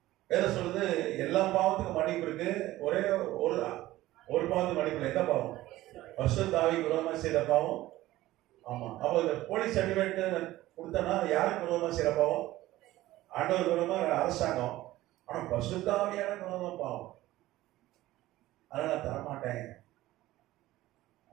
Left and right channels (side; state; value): left; quieter; 16.3 dB